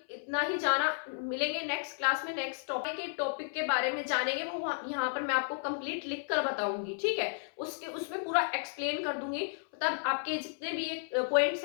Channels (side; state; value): right; silent; 56 dB below the other